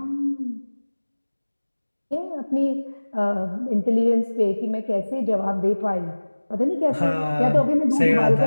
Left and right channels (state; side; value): inverted; both; correlation -1.00